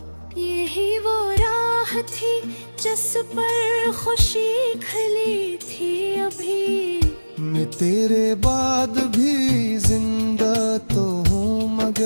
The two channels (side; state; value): both; inverted; correlation -1.00